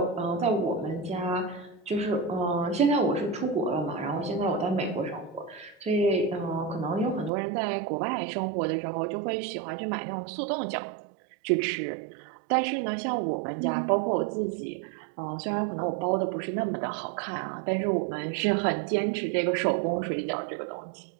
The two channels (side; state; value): left; drops out; at 7.3 s